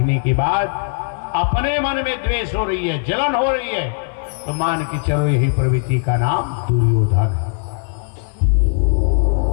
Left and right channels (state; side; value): silent; right; 61 dB below the other